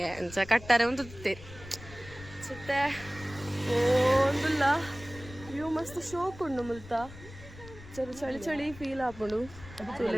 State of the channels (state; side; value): noise; left; rumble, 16 dB below the sound